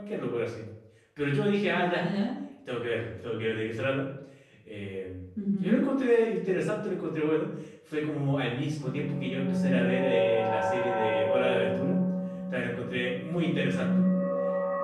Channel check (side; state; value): both; identical; correlation 1.00